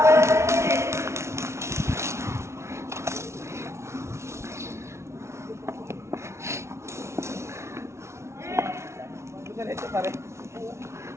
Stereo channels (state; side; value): late; left; 0.13 ms